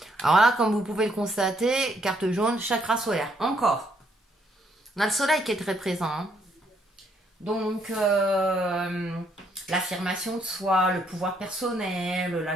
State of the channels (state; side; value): normal; both; correlation 0.71